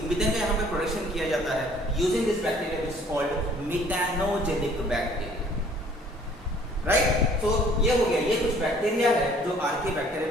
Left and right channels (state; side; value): normal; both; correlation 0.56